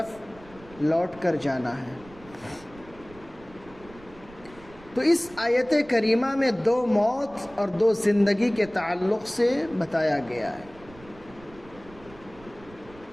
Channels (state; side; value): noise; right; rumble, 22 dB below the sound